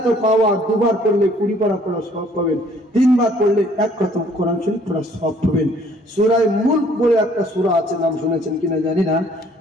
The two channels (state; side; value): normal; both; correlation 0.59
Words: পাওয়ার, দুবার পড়লে 20 পারা পড়া সওয়াব পাবেন, 3 বার পড়লে 1 খতম কোরআন শরীফ পড়া সওয়াব পাবেন। সূরা মুলক বলে একটা সূরা আছে, নাম শুনেছেন কিনা জানি না।